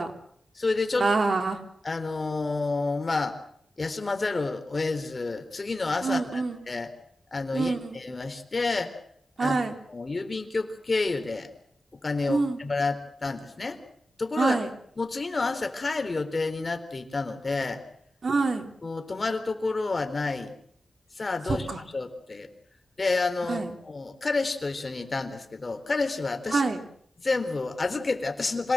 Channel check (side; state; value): both; normal; correlation 0.92